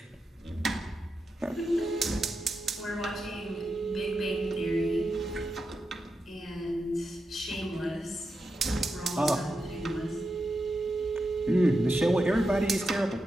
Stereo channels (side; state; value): both; normal; correlation 0.88